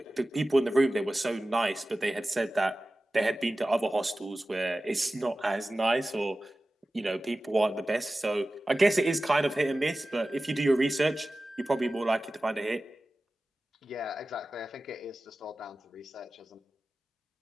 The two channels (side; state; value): both; normal; correlation 0.96